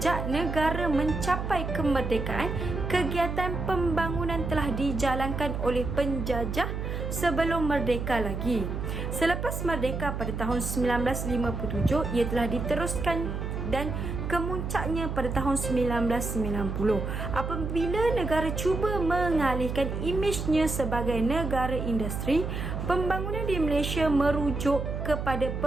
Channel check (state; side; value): noise; right; hum, 4 dB below the sound